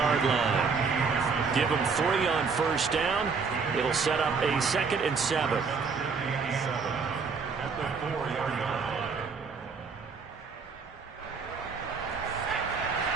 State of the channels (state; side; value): quieter; left; 5.1 dB